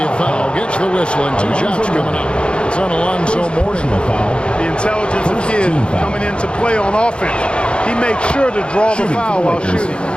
a foul. Gets the whistle, and 2 shots coming up. It's on Alonzo Mourning. The intelligence of Kidd coming into play on offense. He makes sure to draw the foul while shooting.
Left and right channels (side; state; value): right; late; 0.055 ms